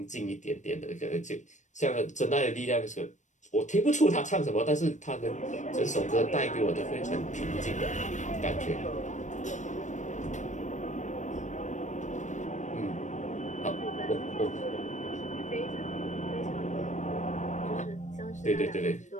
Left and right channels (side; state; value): right; late; 0.35 ms